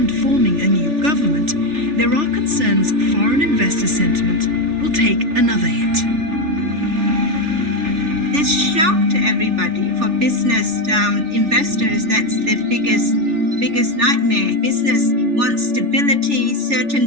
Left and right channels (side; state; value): left; late; 3.4 ms